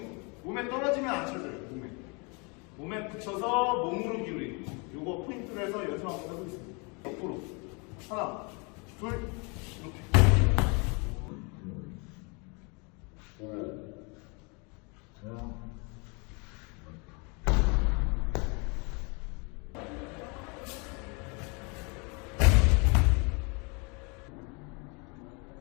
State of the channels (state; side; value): quieter; right; 31.8 dB